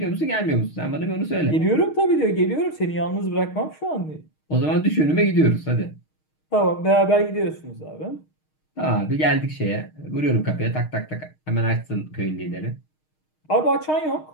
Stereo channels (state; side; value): late; right; 6.4 ms